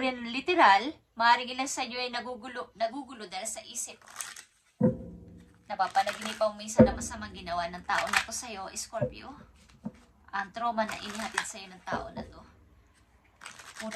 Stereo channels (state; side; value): identical; both; correlation 1.00